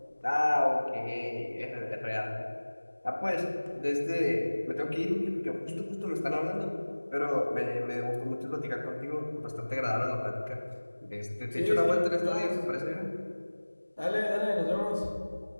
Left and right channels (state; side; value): inverted; both; correlation -1.00